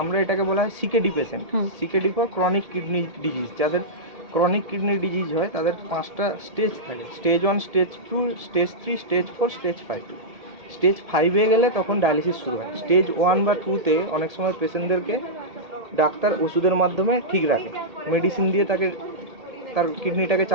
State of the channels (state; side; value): late; left; 1.7 ms